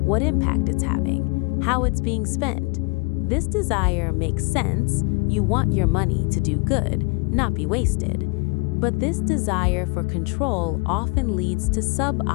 what impact it's having, how it's being spent. This desire makes sense. You want your money to do good, not be wasted. But this desire for control often leads to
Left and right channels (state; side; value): quieter; right; 32.0 dB